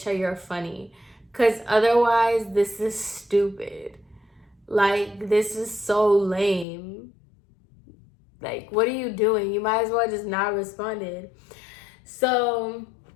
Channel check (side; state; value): right; drops out; at 6.7 s